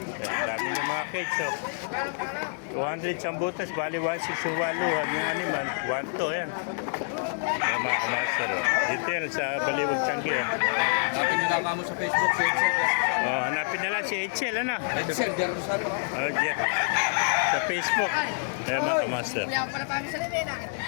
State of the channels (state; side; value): silent; right; digital silence